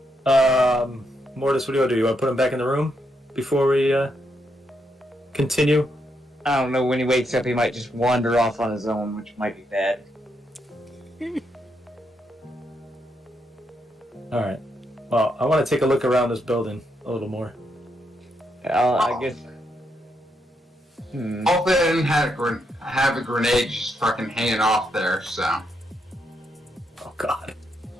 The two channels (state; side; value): normal; both; correlation 0.79